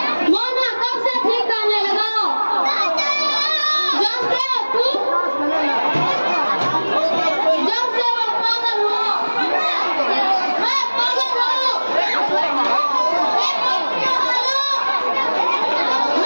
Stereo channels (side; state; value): both; inverted; correlation -1.00